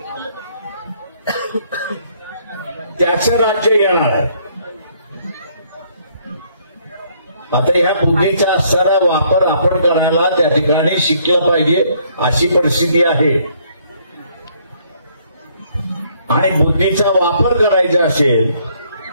त्याचं राज्य येणार आहे. आता ह्या बुद्धीचा असणारा वापर आपण करायला त्या ठिकाणी शिकलं पाहिजे अशी परिस्थिती आहे. आणि बुद्धीचा वापर करायचा असेल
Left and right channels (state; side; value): inverted; both; correlation -0.66